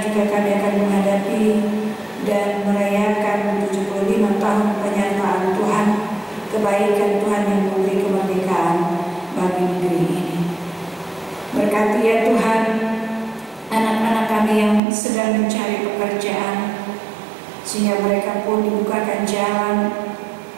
juga kami akan menghadapi dan merayakan 75 tahun penyertaan Tuhan, kebaikan Tuhan yang memberi kemerdekaan bagi negeri ini. Berkati ya Tuhan anak-anak kami yang sedang mencari pekerjaan, sehingga mereka pun dibukakan jalan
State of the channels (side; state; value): left; drops out; at 14.8 s